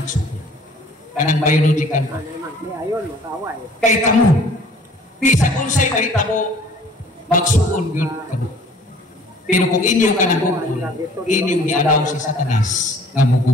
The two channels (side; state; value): both; normal; correlation 0.52